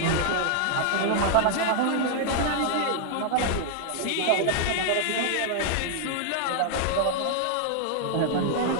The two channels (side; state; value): both; different; correlation -0.01